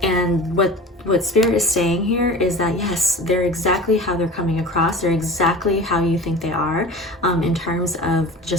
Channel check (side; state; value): both; normal; correlation 0.36